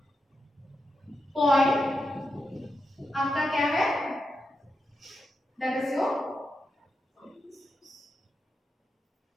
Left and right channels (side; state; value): both; normal; correlation 0.87